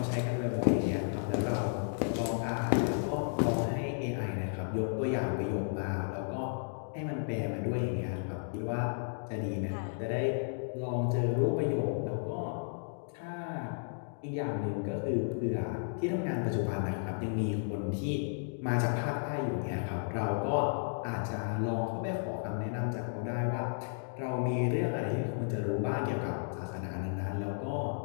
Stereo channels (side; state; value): right; silent; digital silence